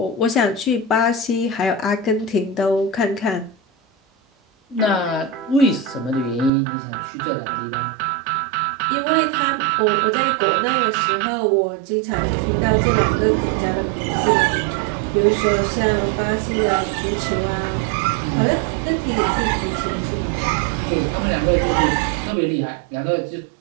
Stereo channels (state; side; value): drops out; left; at 6.5 s